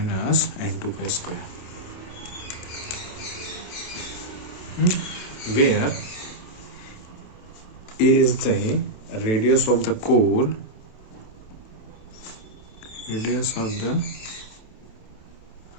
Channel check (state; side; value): late; right; 27 ms